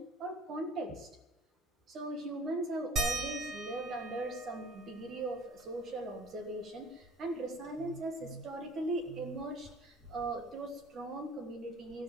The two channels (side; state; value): both; normal; correlation 0.47